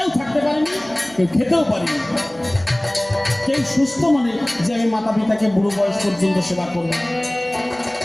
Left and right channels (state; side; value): noise; right; hum, 25 dB below the sound